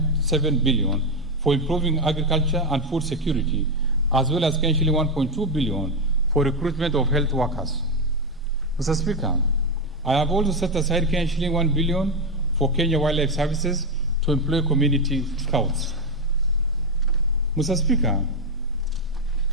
billion for improving agriculture and food security, as well as shilling 1.2 billion for recruitment of health workers. Mr. Speaker, I have also set aside shilling 1 billion for Kenya Wildlife Services to employ community scouts. Mr. Speaker,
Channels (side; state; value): both; normal; correlation 0.07